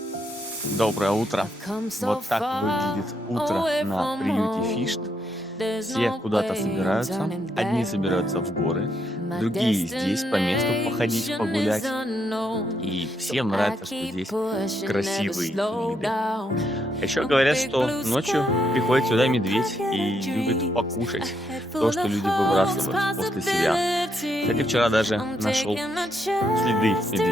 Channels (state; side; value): normal; both; correlation 0.77